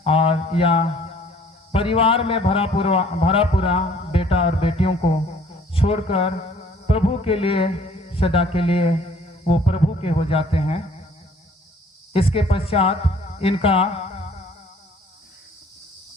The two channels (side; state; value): both; normal; correlation 0.56